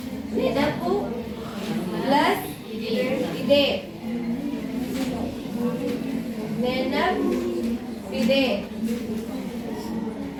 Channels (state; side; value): identical; both; correlation 1.00